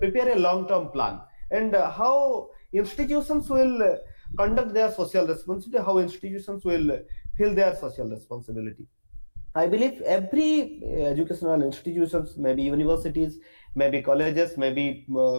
a long term plan, and how institutions will conduct their social responsibility, how institutions will fill their social responsibility. I believe every educational institutions, maybe universities, maybe colleges, maybe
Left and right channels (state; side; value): inverted; both; correlation -1.00